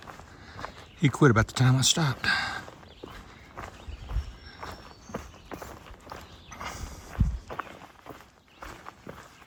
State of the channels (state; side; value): identical; both; correlation 1.00